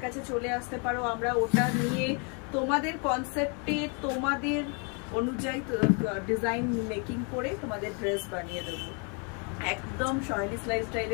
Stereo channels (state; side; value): quieter; right; 36.6 dB